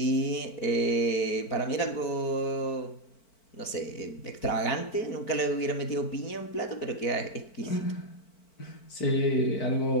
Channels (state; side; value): late; right; 4.5 ms